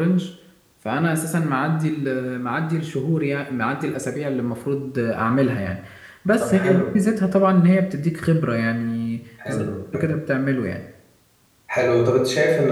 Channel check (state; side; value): identical; both; correlation 1.00